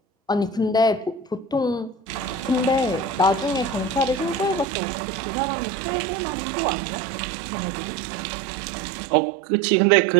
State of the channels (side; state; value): left; drops out; at 4.7 s